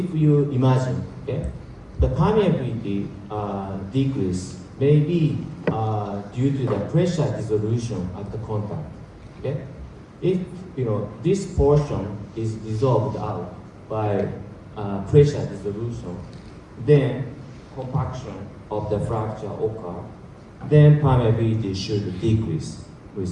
you imagine, okay, the permeability decrease may be due to the pressure dissolution at the contact. Okay, if this portion is dissolved out by pressure dissolution, then compaction of the fracture occur. Then permeability should decrease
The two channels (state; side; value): identical; both; correlation 1.00